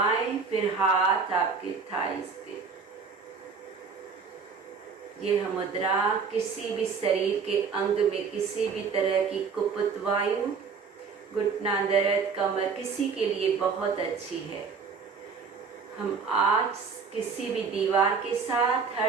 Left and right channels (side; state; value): left; quieter; 5.4 dB